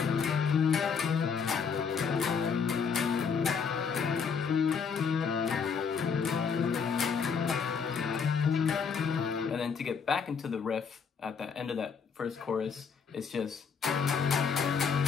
And then to get back into the riff at the end of that first chorus, it's just,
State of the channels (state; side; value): quieter; right; 6.1 dB